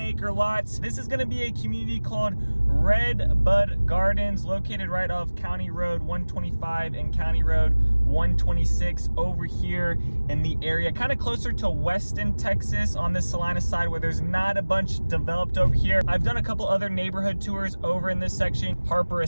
acre lots. This is gonna be a community called Redbud Gardens, located right off County Road 125 and County Road 126 over here in the area, kind of closer to Weston, Texas on this Celina side where there's not a bunch developed over here. I've done a couple other neighborhood tours over in this section. Harper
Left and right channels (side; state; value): both; inverted; correlation -1.00